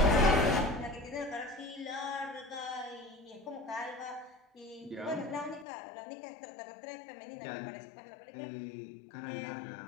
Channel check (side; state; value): right; drops out; at 5.7 s